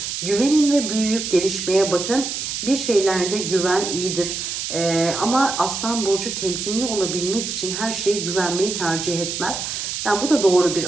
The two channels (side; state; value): right; noise; hiss, 4 dB below the sound